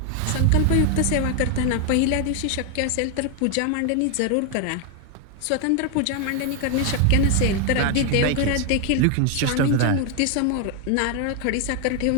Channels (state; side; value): different; both; correlation 0.01